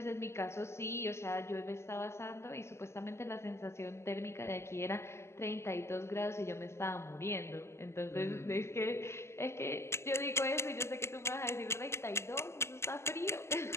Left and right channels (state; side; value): late; right; 0.13 ms